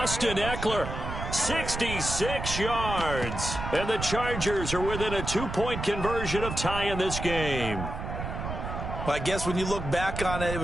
Eckler, 66 yards. And the Chargers are within a 2-point conversion of tying this game. Well, I guess when you look back on it, it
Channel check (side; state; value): right; noise; rumble, 6 dB below the sound